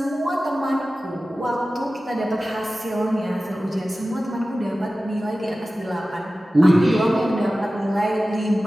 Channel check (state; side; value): normal; both; correlation 0.96